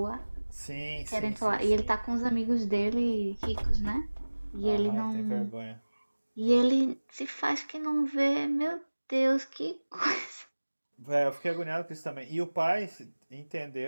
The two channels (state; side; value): inverted; both; correlation -1.00